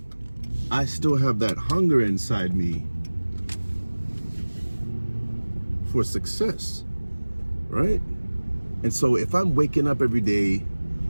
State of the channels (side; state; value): both; inverted; correlation -1.00